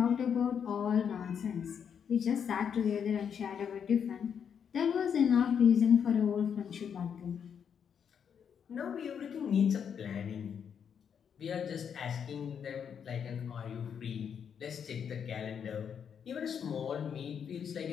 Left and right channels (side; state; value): right; quieter; 7.6 dB